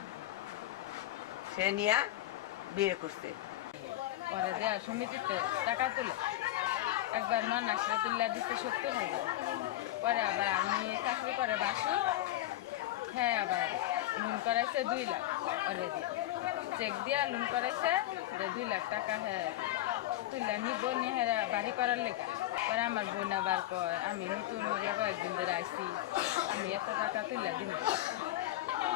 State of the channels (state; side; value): quieter; right; 15.1 dB